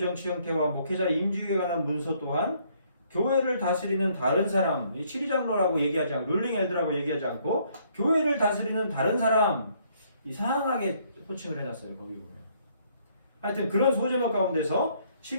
형태와 목회자 임직에 관한 문서 또한 교회를 다스리는 다른 사람, 이 7위 장로라고 얘기하지 않고 룰링 엘드라고 얘기하지 않고 교회를 다스리는 다른 사람 이상하게 호칭을 해놨어요. 거기 보면 하여튼 그런 소제목 가운데서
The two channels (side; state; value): both; inverted; correlation -0.66